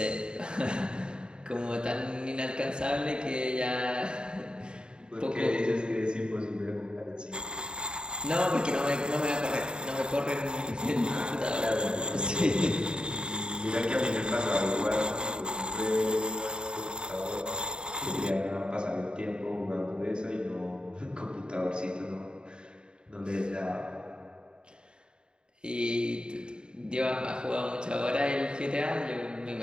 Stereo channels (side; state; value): left; late; 0.049 ms